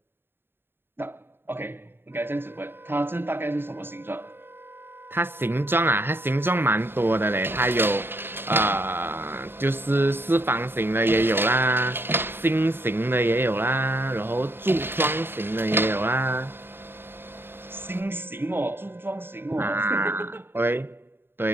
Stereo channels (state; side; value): late; left; 0.11 ms